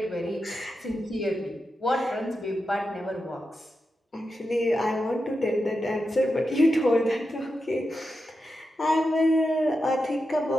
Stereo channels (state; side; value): normal; both; correlation 0.89